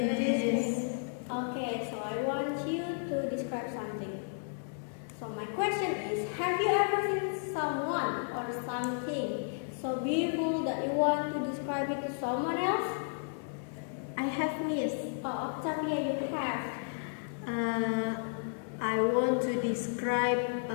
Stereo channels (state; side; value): silent; right; digital silence